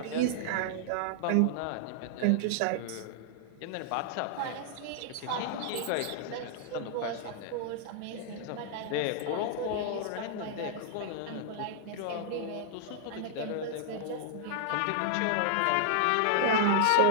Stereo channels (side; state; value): both; different; correlation -0.01